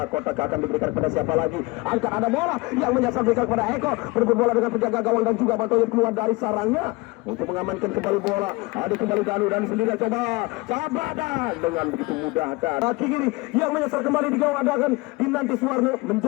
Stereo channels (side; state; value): right; quieter; 24.3 dB